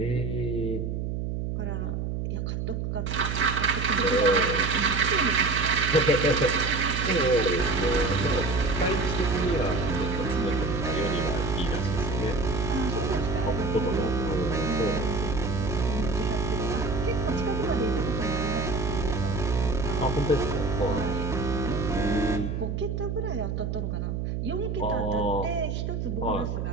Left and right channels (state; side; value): noise; right; hum, 2 dB below the sound